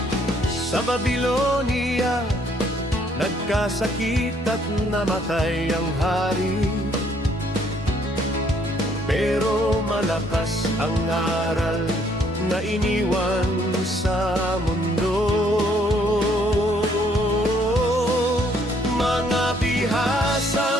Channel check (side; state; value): both; normal; correlation 0.66